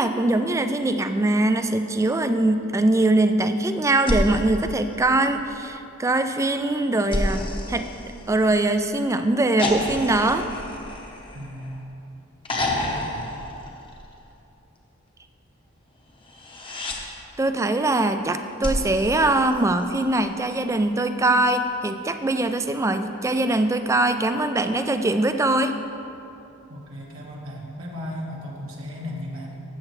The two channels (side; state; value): both; normal; correlation 0.60